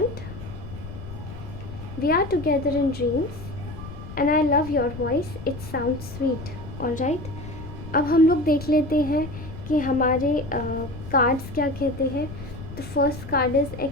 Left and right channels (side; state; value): left; noise; rumble, 11 dB below the sound